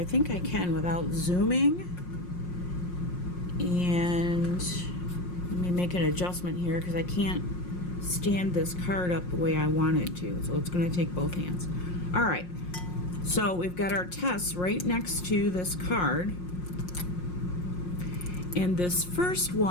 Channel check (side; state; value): right; late; 5.6 ms